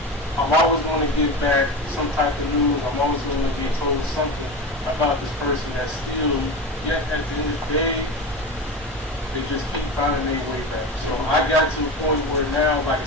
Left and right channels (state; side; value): normal; both; correlation 0.25